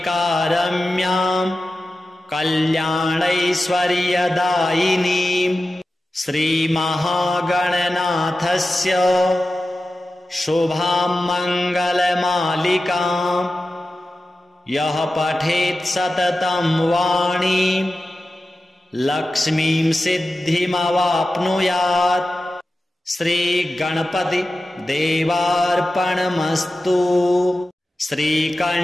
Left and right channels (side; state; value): both; normal; correlation 0.94